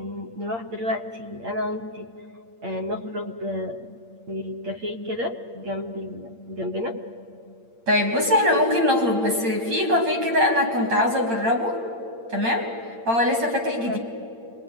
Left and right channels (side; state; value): left; late; 8.7 ms